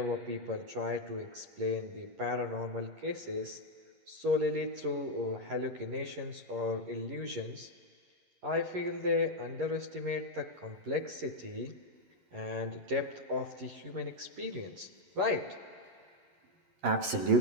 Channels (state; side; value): late; left; 11 ms